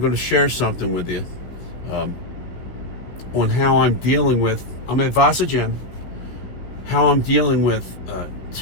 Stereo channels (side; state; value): right; late; 16 ms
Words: going to share something with you on how I'm dealing with, I'm at Vasa Gym, how I'm dealing with